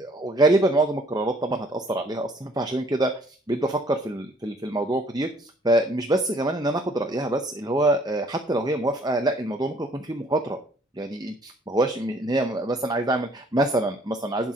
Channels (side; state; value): both; normal; correlation 0.59